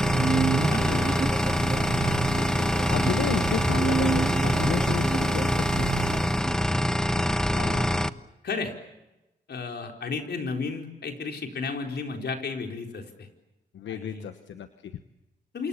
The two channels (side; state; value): both; normal; correlation 0.81